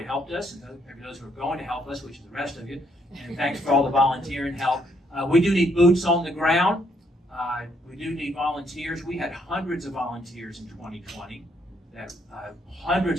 helped us and those who are going to help us, which is the rest of you. And thanks for all the volunteering help. We do need boots on the ground. We do need volunteers. We had hundreds of volunteers in 2020,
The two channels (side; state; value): both; normal; correlation 0.71